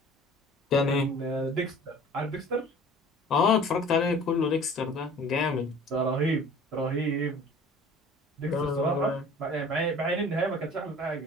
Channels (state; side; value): normal; both; correlation 0.46